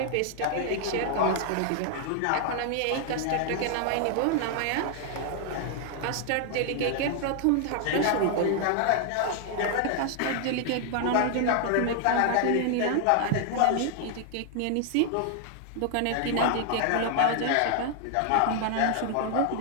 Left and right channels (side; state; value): both; different; correlation 0.00